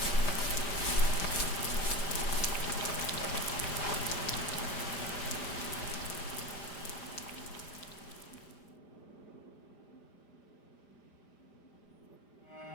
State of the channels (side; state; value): right; late; 5.0 ms